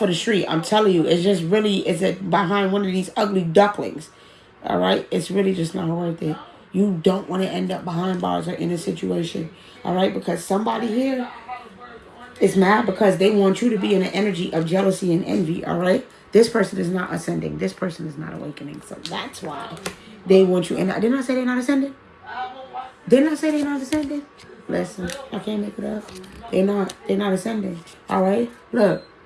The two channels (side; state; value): both; identical; correlation 1.00